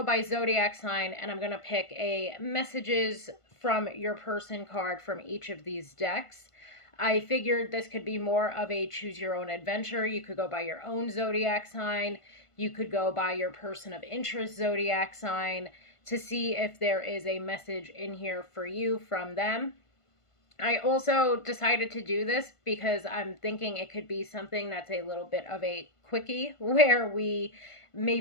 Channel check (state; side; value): late; right; 1.5 ms